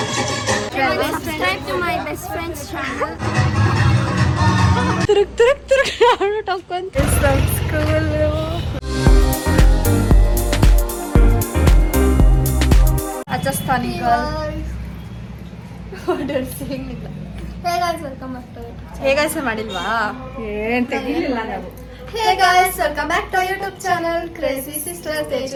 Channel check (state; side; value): identical; both; correlation 1.00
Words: Subscribe to my best friend's channel. ತಿರುಗ್ ಅವಳು ಟೊಕ್ಕೊಂತ ಸ್ಕೂಲ್ ರಾಜಸ್ಥಾನಿ ಹೇಗಾಯ್ಸ ಮಾಡಿಲ್ವಾ ಏನ್ ತೆಗಿಲಿಲ್ಲ ನಾವು. Hey guys, welcome back to our YouTube channel Crazy Sisters